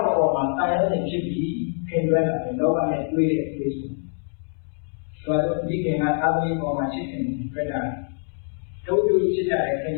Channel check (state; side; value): silent; right; 62 dB below the other